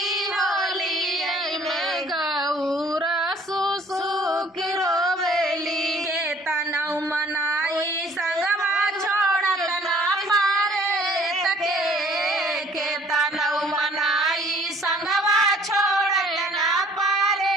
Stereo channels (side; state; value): both; normal; correlation 0.56